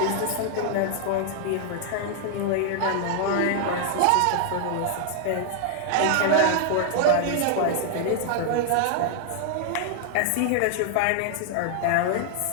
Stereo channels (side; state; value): both; different; correlation 0.00